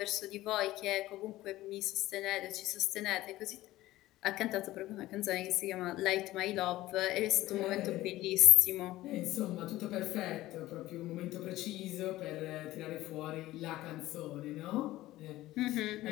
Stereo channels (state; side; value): quieter; right; 16.4 dB